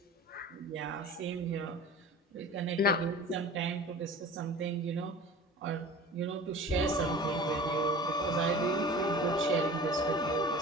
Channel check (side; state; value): both; normal; correlation 0.39